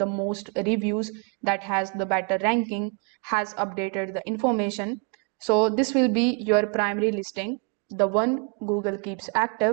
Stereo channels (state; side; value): quieter; left; 33.7 dB